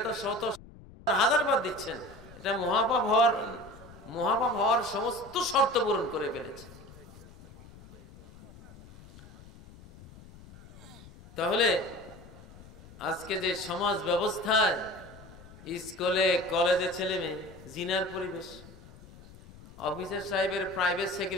তো শত হাজার বার দিচ্ছেন, এটা মহাপাপ হওয়ার সমস্ত শর্ত পূরণ করে ফেলেছে। তাহলে আজকে যে সমাজ ব্যবস্থায় স্কুলে কলেজে ছেলে মেয়ে জিনার পরিবেশ, অফিসার সাহেবের প্রাইভেট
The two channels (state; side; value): noise; left; rumble, 20 dB below the sound